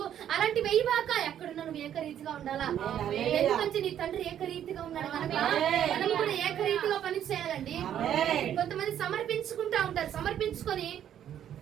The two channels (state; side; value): quieter; left; 10.2 dB